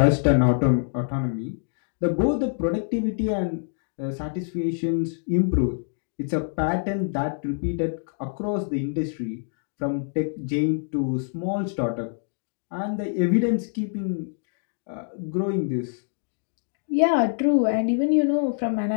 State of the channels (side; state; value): right; silent; digital silence